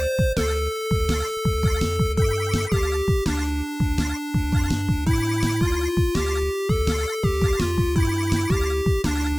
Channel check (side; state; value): both; normal; correlation 0.98